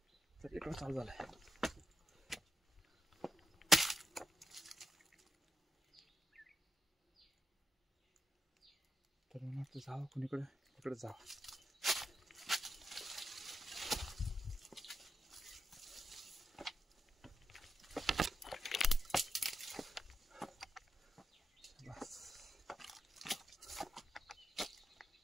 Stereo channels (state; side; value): normal; both; correlation 0.87